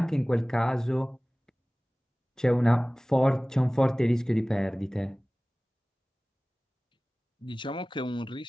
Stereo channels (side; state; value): both; normal; correlation 0.98